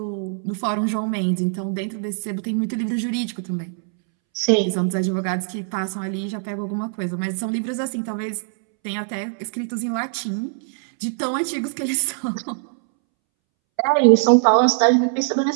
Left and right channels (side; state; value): left; silent; 64 dB below the other